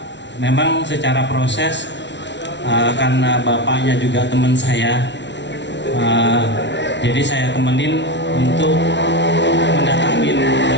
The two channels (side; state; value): right; late; 0.51 ms